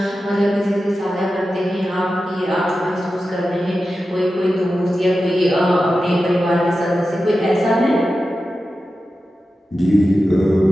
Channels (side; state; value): both; normal; correlation 0.92